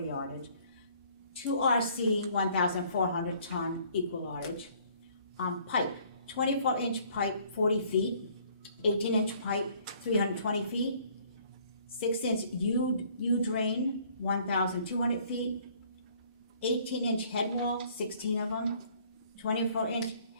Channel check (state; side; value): inverted; both; correlation -0.59